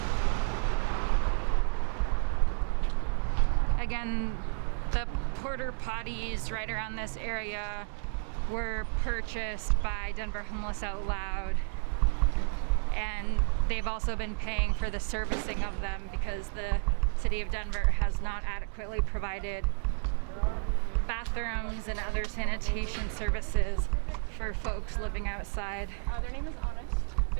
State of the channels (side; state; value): left; silent; digital silence